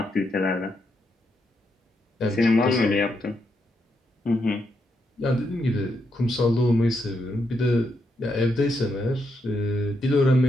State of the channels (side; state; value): both; normal; correlation 0.80